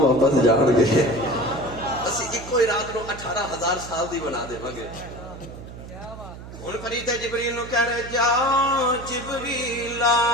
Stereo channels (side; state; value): right; noise; hum, 14 dB below the sound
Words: واپس جان گے۔ اسی ایک ہی رات نو 18,000 سال دی بنا دے گے۔ ہن فرشتے جبریل نو کہہ رہے جا جبریل